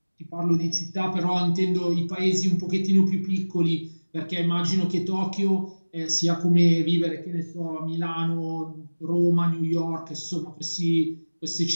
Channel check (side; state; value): both; inverted; correlation -1.00